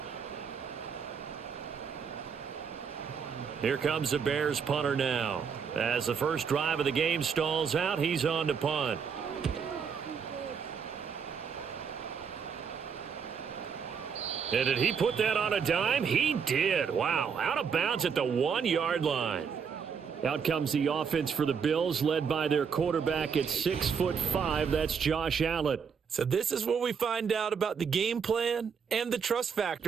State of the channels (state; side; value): quieter; left; 6.5 dB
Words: Here comes the Bears punter now. As the first drive of the game stalls out, he's on to punt. And did he put that on a dime? He did. Wow. Out of bounds at the 1-yard line. Out comes the offense for the Bills, led by their quarterback at 6'5". That's Josh Allen. So this is where we find out about the game plan and the trust